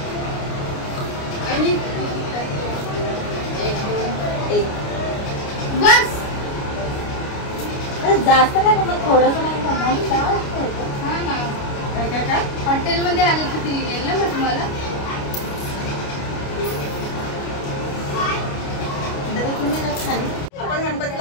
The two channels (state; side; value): late; right; 29 ms